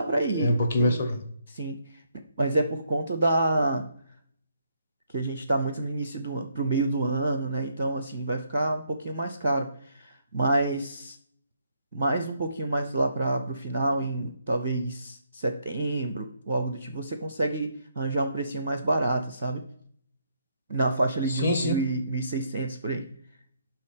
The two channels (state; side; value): inverted; both; correlation -0.73